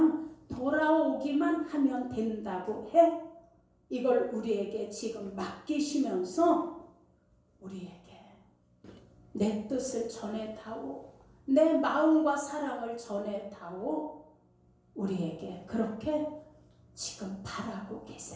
돌아오기만 하면 된다고 해. 이걸 우리에게 지금 맡기시면서 우리에게 내 뜻을 전해다오, 내 마음과 사랑을 전해다오, 우리에게 그렇게 지금 바라고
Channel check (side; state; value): both; identical; correlation 1.00